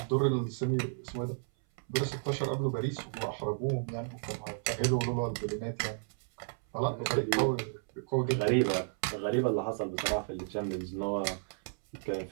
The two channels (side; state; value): left; silent; 56 dB below the other